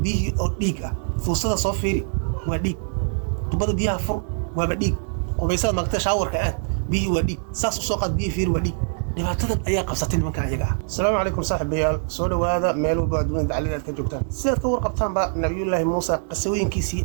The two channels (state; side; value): silent; left; digital silence